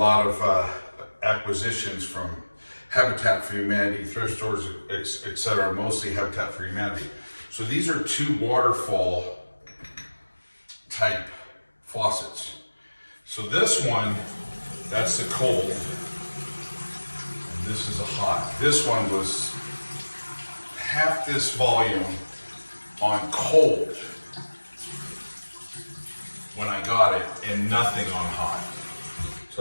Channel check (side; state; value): both; inverted; correlation -1.00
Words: of acquisitions from Habitat for Humanity, thrift stores, etc., mostly Habitat for Humanity. So these are two Waterfall type faucets. So this one, that's the cold, and this is a hot. This one was half this volume on cold when I got it, and nothing on hot.